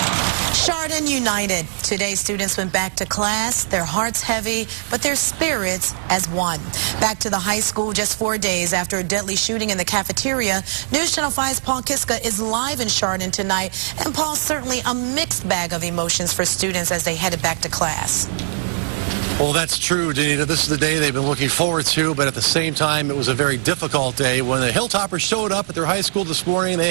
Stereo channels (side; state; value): left; silent; 65 dB below the other